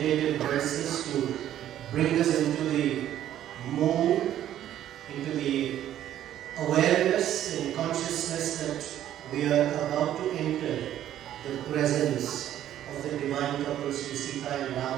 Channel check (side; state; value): left; quieter; 11.7 dB